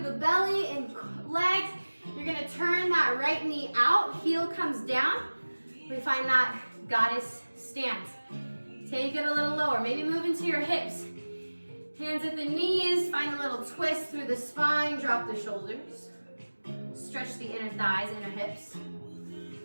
the belly and legs. You're gonna turn that right knee out, heel comes down. We find that goddess stance. Take it a little lower, maybe move into your hips. Hands at the knees, find a little twist through the spine, drop the shoulders. Stretch the inner thighs, inner hips.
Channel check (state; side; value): inverted; both; correlation -1.00